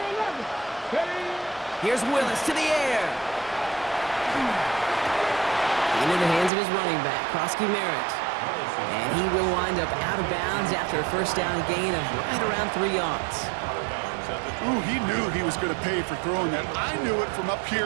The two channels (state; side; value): drops out; left; at 6.5 s